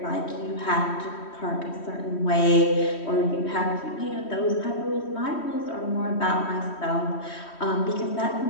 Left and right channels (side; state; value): right; late; 3.1 ms